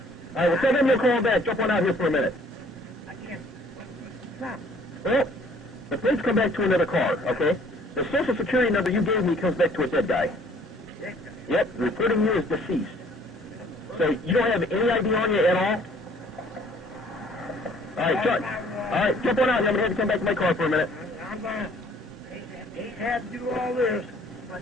All right, well, tell them you'll call back. Jump on out here for a minute. I can't. Stop. Well, the plates come back to another car, okay? The Social Security number you gave me comes back to a dead guy. Dead guy. Yep, reporting you as deceased. So you don't have any ID on you at all? All right, jump on out here. I'm going to have to come back to my car for a minute. I'm going to. Hate to have to do all this, but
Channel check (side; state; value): both; normal; correlation 0.57